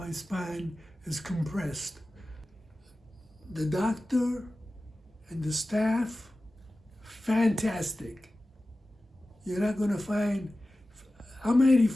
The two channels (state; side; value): normal; both; correlation 0.95